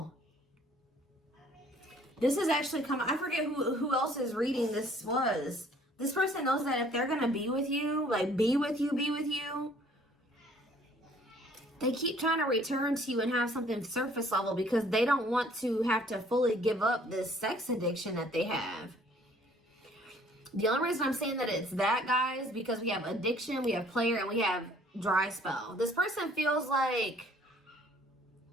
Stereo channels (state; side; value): normal; both; correlation 0.58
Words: This is actually coming. I forget who else's reading this was. This person knows that if they're going to be with you, like be with you, they keep trying to return to you and have something surface level because they don't want to have to fully give up this sex addiction that they have. The only reason I'm saying that it's that, guys, because we have addiction, we have player, and we have dry spell. This person feels like,